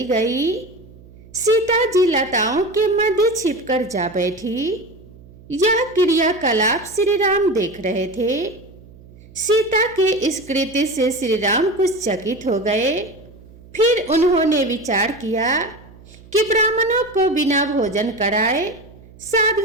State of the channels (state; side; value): noise; right; hum, 22 dB below the sound